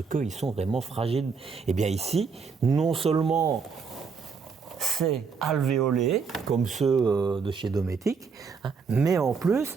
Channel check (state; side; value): quieter; left; 5.4 dB